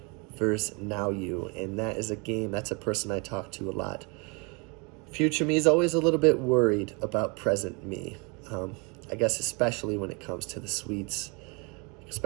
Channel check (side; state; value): left; quieter; 30.9 dB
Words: versus now you. And that is a game, that's a person I talk to a lot. Future me is always a little bit worried about present me. I guess especially when it comes to the sweets,